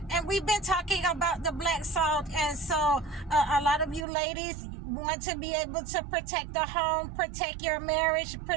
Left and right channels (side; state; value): left; drops out; at 4.0 s